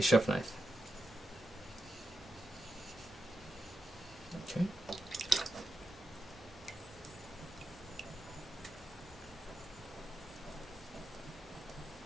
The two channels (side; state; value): both; normal; correlation 0.87